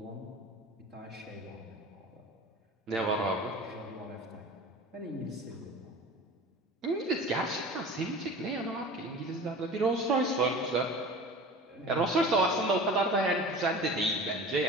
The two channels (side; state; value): both; normal; correlation 0.37